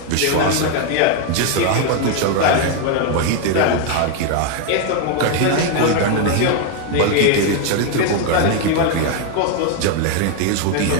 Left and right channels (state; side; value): different; both; correlation 0.01